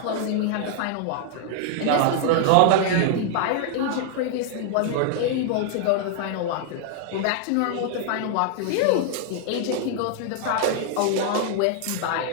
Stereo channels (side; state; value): both; different; correlation 0.00